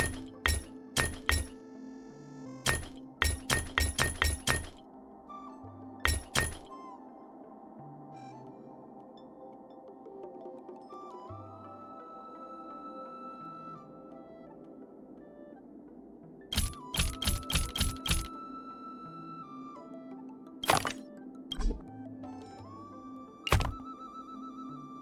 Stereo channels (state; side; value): identical; both; correlation 1.00